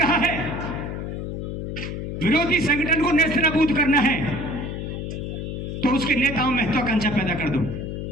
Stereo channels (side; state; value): left; noise; hum, 5 dB below the sound